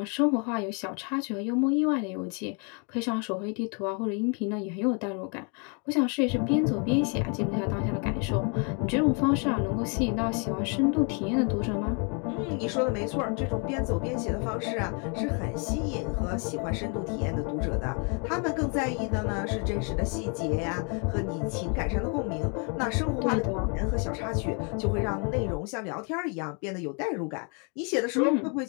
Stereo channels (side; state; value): right; quieter; 36.6 dB